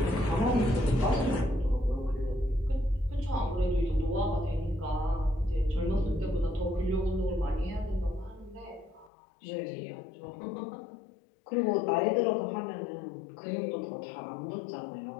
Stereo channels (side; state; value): right; drops out; at 9.1 s